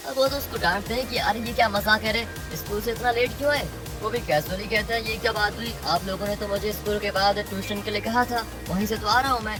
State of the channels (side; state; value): both; identical; correlation 1.00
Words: अब वो तो उसको डांटते हैं कि अरे ये क्या मजाक है रे, स्कूल से इतना लेट क्यों है। वो भी कैजुअली कहता है ये क्या बात हुई, आप लोगों ने तो मुझे स्कूल के बाद ट्यूशन के लिए कहा था, वहीं से तो आ रहा हूँ मैं